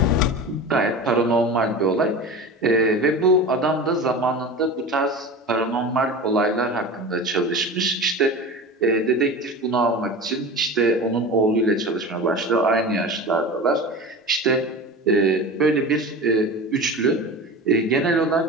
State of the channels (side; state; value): both; normal; correlation 0.31